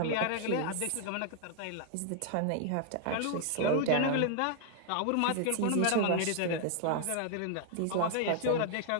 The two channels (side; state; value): both; different; correlation 0.00